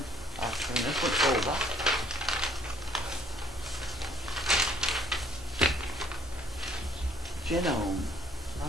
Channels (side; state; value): both; normal; correlation 0.61